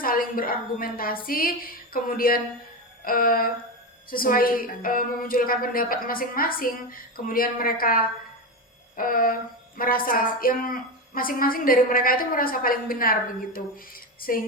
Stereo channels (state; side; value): normal; both; correlation 0.16